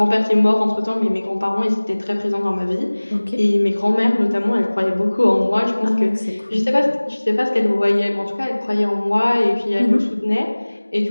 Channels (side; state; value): both; inverted; correlation -1.00